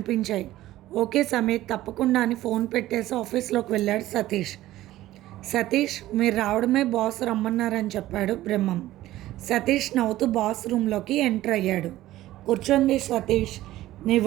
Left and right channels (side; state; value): left; quieter; 15.3 dB